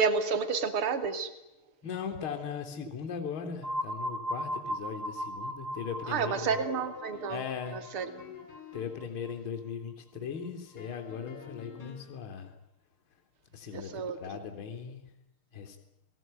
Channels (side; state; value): left; late; 6.6 ms